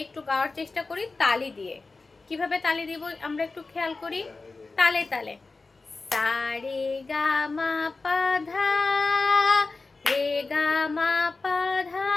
একটু গাওয়ার চেষ্টা করি তালি দিয়ে। কিভাবে তালি দিব আমরা একটু খেয়াল করি। তালে তালে। সা, রে, গা, মা, পা, ধা। রে, গা, মা, পা, ধা,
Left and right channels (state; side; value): quieter; right; 3.8 dB